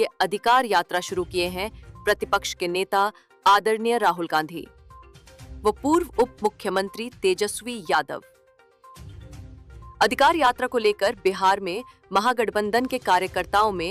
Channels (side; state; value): both; identical; correlation 1.00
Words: अधिकार यात्रा शुरू किए हैं प्रतिपक्ष के नेता आदरणीय राहुल गांधी, वो पूर्व उप मुख्यमंत्री तेजस्वी यादव। अधिकार यात्रा को लेकर बिहार में महागठबंधन के कार्यकर्ताओं